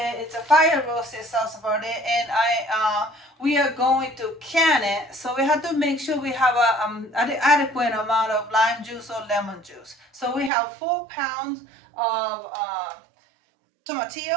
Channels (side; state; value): left; drops out; at 10.5 s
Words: It's a fire roasted salsa verde, and we are going to can it. So we have to make sure we have an adequate amount of lime juice or lemon juice. So we have 4 pounds of